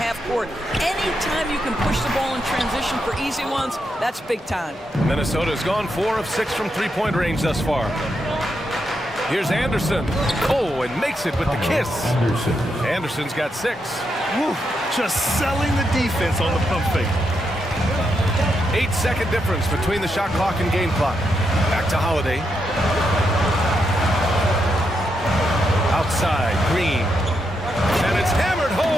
court, anytime you can push the ball in transition for easy ones, that's big time. Minnesota's gone 4 of 6 from three-point range thus far. Here's Anderson. Oh, and makes it with the kiss. Anderson's got 6. Woo, just selling the defense on the pump fake. 8-second difference between the shot clock and game clock. Back to Holiday. Outside, Green. And it's hammered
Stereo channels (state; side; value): normal; both; correlation 0.82